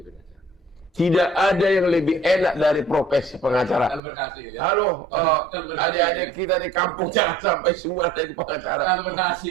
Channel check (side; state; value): left; drops out; at 4.0 s